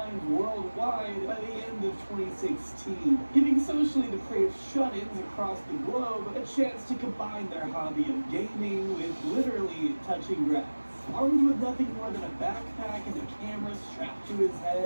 worldwide by the end of 2016, giving socially depraved shut-ins across the globe a chance to combine their hobby of gaming with literally touching grass. Armed with nothing more than a backpack and a camera strapped to his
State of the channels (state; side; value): inverted; both; correlation -1.00